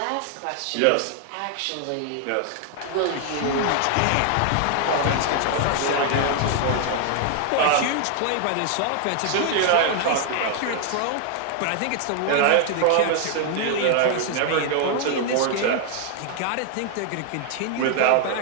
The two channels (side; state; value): both; different; correlation 0.00